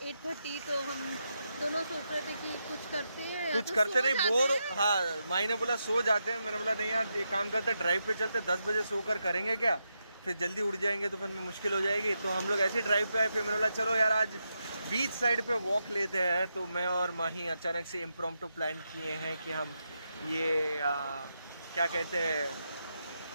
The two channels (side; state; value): both; inverted; correlation -0.85